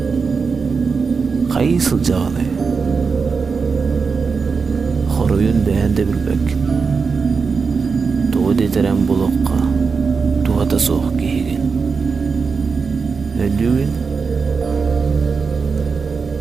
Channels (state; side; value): quieter; left; 5.1 dB